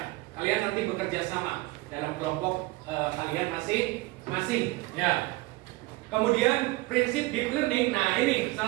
kalian nanti bekerja sama dalam kelompok kalian masing-masing. Ya. Kemudian prinsip deep learning. Nah, ini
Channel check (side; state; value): left; quieter; 21.5 dB